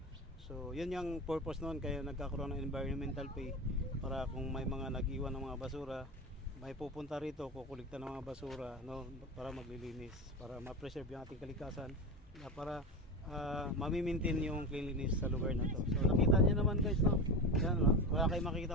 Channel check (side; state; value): both; normal; correlation 0.23